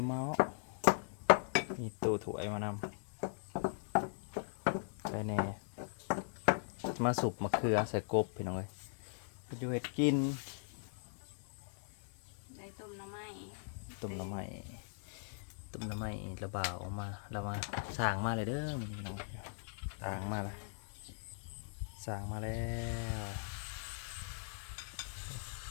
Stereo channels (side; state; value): right; silent; digital silence